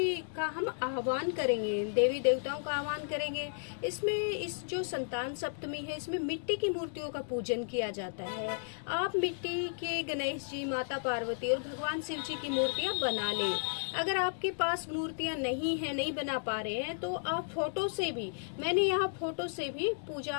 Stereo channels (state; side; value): silent; right; digital silence